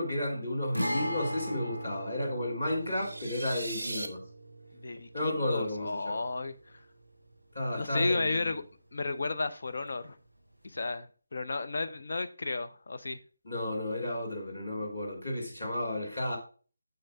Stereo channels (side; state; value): both; inverted; correlation -0.87